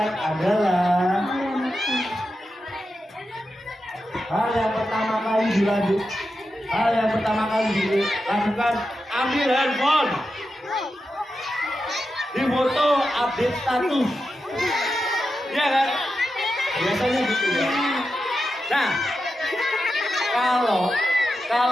adalah ambil handphone, difoto, update status, ya kan? Biasanya gitu ya. Nah,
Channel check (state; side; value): normal; both; correlation 0.89